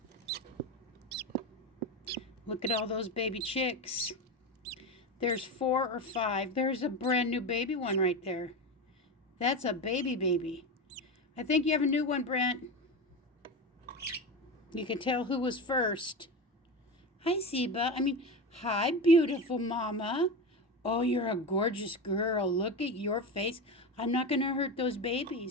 Look at all those baby chicks. There's 4 or 5. There's a brand new baby one right there. That's a baby. I think you have a new one, Brent. You can tell who was first. Hi, Zeba. Hi, beautiful mama. Oh, you're a gorgeous girl. Look at your face. I'm not going to hurt those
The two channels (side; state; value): both; normal; correlation 0.21